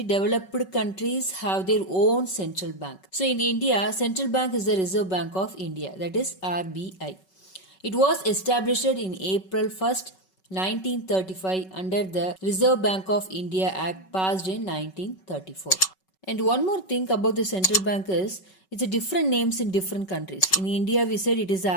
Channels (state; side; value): late; right; 5.3 ms